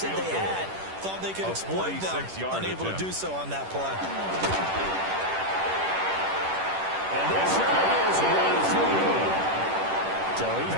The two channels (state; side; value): late; left; 10 ms